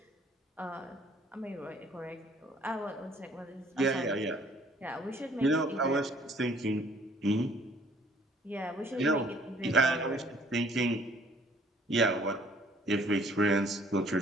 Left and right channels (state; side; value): normal; both; correlation 0.59